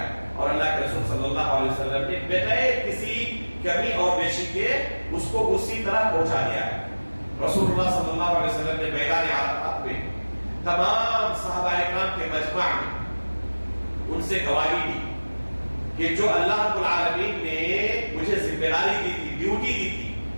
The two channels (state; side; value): inverted; both; correlation -1.00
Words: اور اللہ کے رسول صلی اللہ علیہ وسلم نے بغیر کسی کمی اور بیشی کے اس کو اسی طرح پہنچا دیا ہے۔ رسول اللہ صلی اللہ علیہ وسلم نے میدان عرفات میں تمام صحابہ کرام کے مجمع میں ان سے گواہی دی کہ جو اللہ رب العالمین نے مجھے ذمہ داری دی تھی، ڈیوٹی دی تھی،